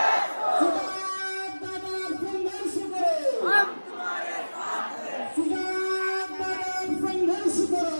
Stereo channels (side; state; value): both; inverted; correlation -1.00